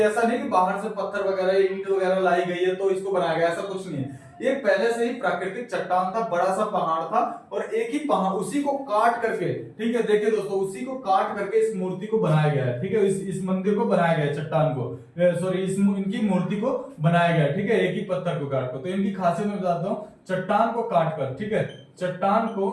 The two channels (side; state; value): both; identical; correlation 1.00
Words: ऐसा नहीं कि बाहर से पत्थर वगैरह ईंट वगैरह लाई गई है तो इसको बनाया गया, ऐसा कुछ नहीं है। ये पहले से ही प्राकृतिक चट्टान था, बड़ा सा पहाड़ था, और एक ही पहाड़, उसी को काट करके, ठीक है, देखिए दोस्तों, उसी को काट करके इस मूर्ति को बनाया गया है, ठीक है, इस मंदिर को बनाया गया है, चट्टान को, सॉरी, इनकी मूर्ति को बनाया गया है, ठीक है, एक ही पत्थर को काट कर। तो इनकी खासियत मैं बताता हूँ, चट्टान को काट कर, ठीक है, चट्टान